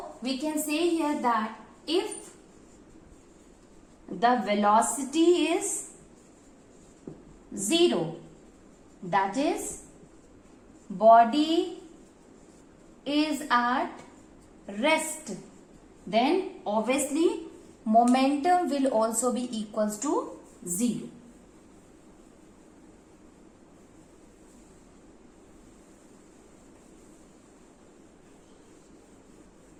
we can say here that if the velocity is 0, that is body is at rest, then obviously momentum will also be equals to 0.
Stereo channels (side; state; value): both; identical; correlation 1.00